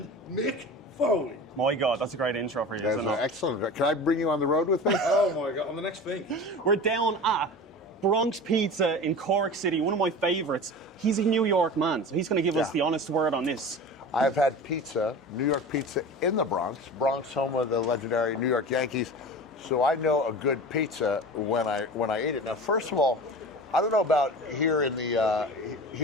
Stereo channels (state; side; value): normal; both; correlation 0.33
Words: Mick Foley. My God, that's a great intro for you, That's isn't it? excellent. Can I bring you on the road with me? Oh my God, I'm the next thing. We're down at Bronx Pizza in Cork City, one of my favourites. He's a New York man, so he's going to give us the honest word on this. I've had pizza, New York pizza in the Bronx, home of the legendary New York Yankees. So I know a good pizza when I eat it. Now, first of all, I don't know about here in